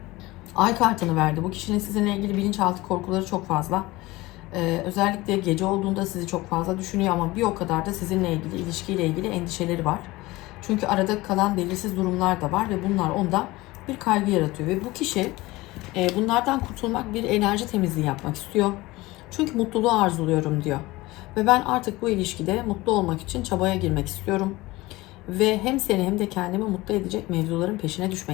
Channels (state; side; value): quieter; right; 20.1 dB